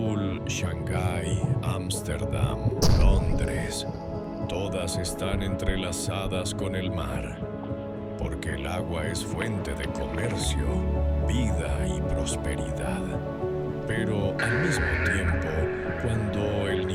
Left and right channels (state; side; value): identical; both; correlation 1.00